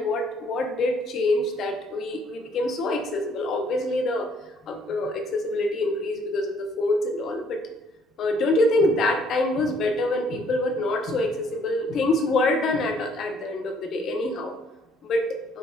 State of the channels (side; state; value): both; normal; correlation 0.64